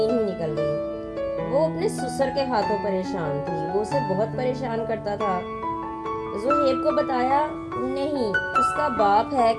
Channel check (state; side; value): identical; both; correlation 1.00